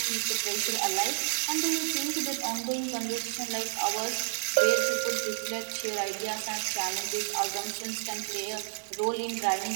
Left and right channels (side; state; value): left; silent; 58 dB below the other